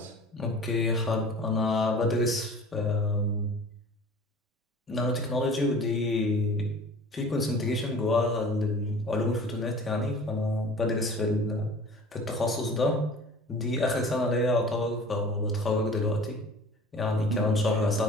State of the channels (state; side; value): normal; both; correlation 0.43